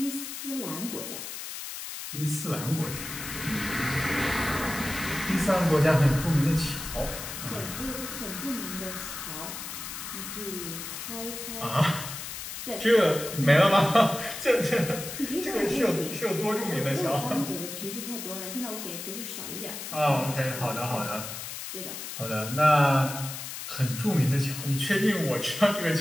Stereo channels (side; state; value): left; noise; hiss, 8 dB below the sound